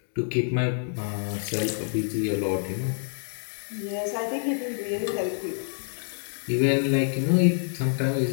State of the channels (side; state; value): right; silent; digital silence